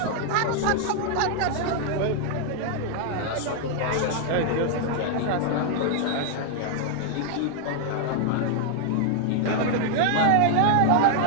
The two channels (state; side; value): different; both; correlation 0.00